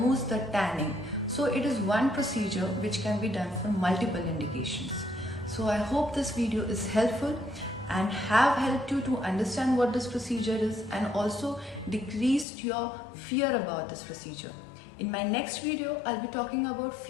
the tanning. So it is one procedure which can be done for multiple indications. So I hope this video is helpful and have helped you to understand what this procedure is, and also decreased your fear about this procedure. In my next video, I'll be talking about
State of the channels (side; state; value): right; drops out; at 12.5 s